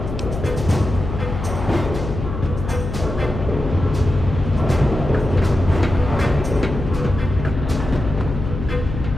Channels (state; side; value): noise; left; hum, 6 dB below the sound